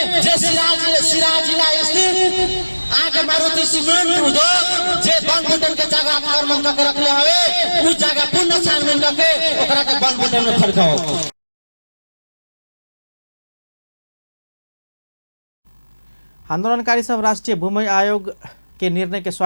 जे सिराहा जिला स्थित आगे मारुति सीमेंट उद्योग जे वन बुटन के जगह आक्रमण करके रखले हवे उस जगह पुनः छानबीन करके ओकरा के वन बुटन में फरकाओ। आंदोलनकारी सब राष्ट्रीय भूमि आयोग के निर्णय के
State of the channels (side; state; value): both; inverted; correlation -1.00